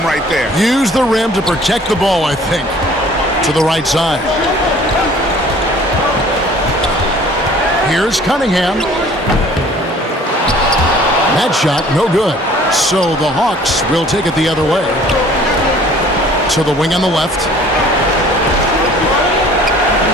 right there. Use the rim to protect the ball, I think. To the right side. Here's Cunningham. That shot, no good. So the Hawks will take it the other way. To the wing on the left.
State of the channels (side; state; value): both; normal; correlation 0.52